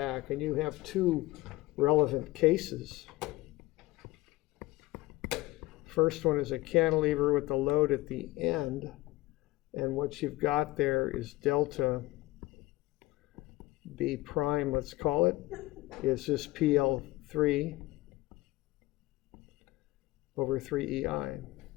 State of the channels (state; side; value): quieter; right; 18.9 dB